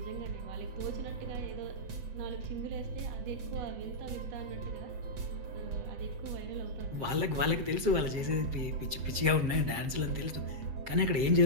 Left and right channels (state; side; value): late; left; 7.5 ms